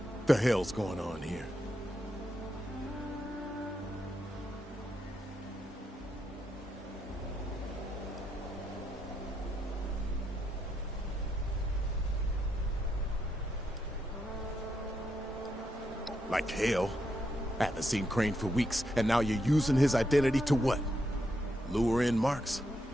The hell's going on here? Like hell. I haven't seen Crane for weeks, and now you're using his identity to what? Lure in Marks?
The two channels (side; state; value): both; normal; correlation 0.81